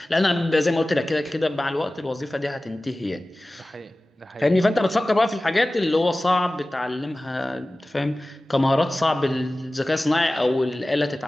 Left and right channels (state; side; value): normal; both; correlation 0.97